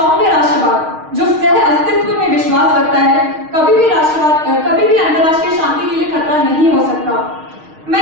राष्ट्रवाद जो सह अस्तित्व में विश्वास रखता है, कभी भी अंतर्राष्ट्रीय शांति के लिए खतरा नहीं हो सकता। मैं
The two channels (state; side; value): late; left; 6.4 ms